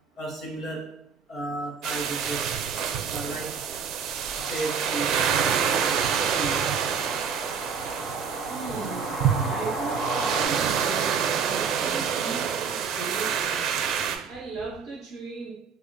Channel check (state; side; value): quieter; left; 6.2 dB